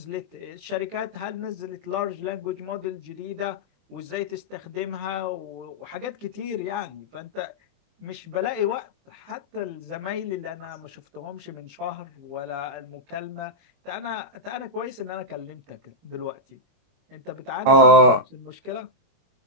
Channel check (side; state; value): left; late; 21 ms